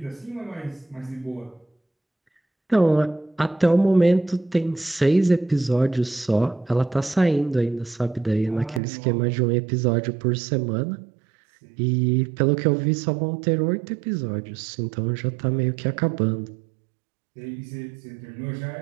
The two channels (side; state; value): left; drops out; at 8.8 s